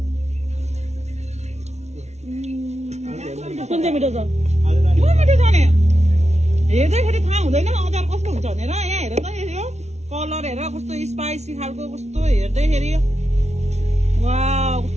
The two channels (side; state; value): left; late; 0.32 ms